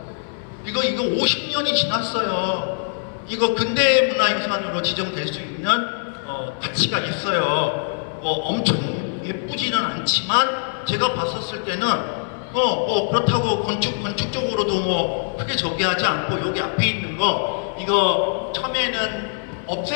이거 50년이 지났어요. 이거 근대문화유산으로 지정될 수 있는 가치가 있어요. 엄청 예쁘지는 않지만 제가 봤었을 때는 그렇다고 건축적으로도 크게 저기 하지 않고 여기 앞에 있는 거 이거 처음에는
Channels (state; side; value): silent; right; digital silence